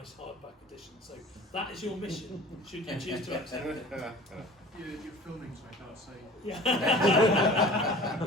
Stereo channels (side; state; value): both; normal; correlation 0.42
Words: hardback edition. So that is your mission, should you choose to accept it. You're filming, so I can't say. Yeah.